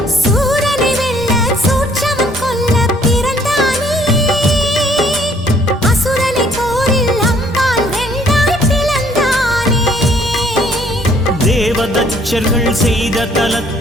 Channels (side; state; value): both; normal; correlation 0.62